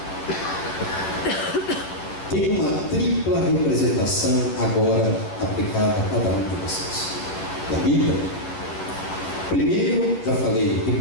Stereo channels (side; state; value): right; late; 10 ms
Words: tem uma tripla representação agora aplicada a cada um de vocês. Da Bíblia. Primeiro, já falei,